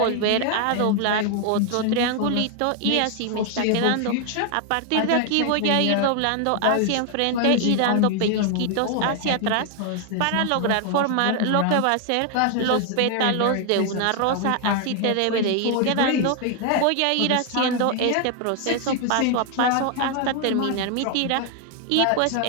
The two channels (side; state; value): both; different; correlation 0.00